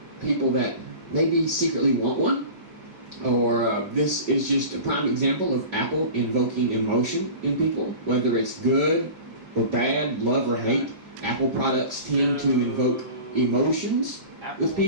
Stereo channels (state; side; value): late; left; 5.2 ms